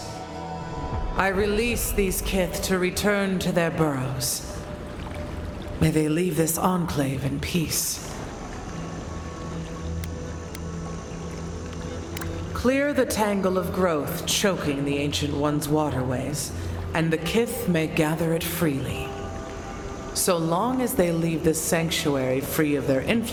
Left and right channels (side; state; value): both; identical; correlation 1.00